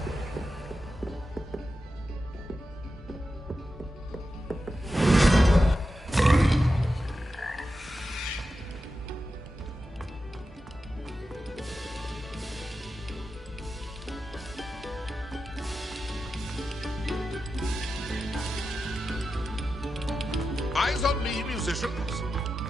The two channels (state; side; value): normal; both; correlation 0.91